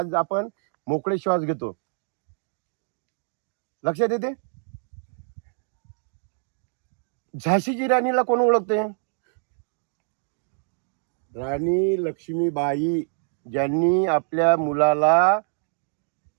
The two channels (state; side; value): silent; left; digital silence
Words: आपण मोकळे श्वास घेतो. लक्षात येते? झाशीची राणीला कोण ओळखते? राणी लक्ष्मीबाई, ज्यांनी आपल्या मुलाला